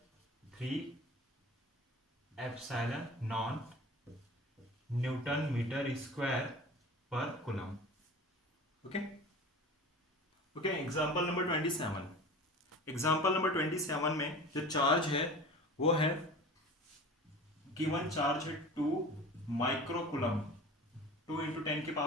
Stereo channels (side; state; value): both; normal; correlation 0.38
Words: 3 epsilon naught newton metre square पर coulomb. Okay okay, example number 27। Example number 27 में जो चार्ज है वो है गिवन चार्ज है 2 माइक्रोकुलम, 2 इंटू